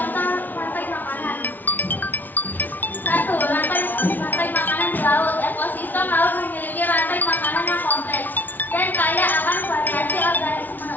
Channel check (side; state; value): right; late; 0.084 ms